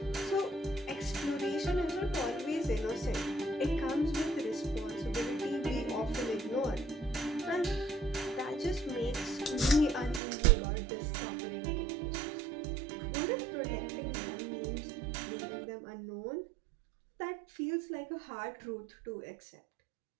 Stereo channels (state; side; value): drops out; left; at 10.2 s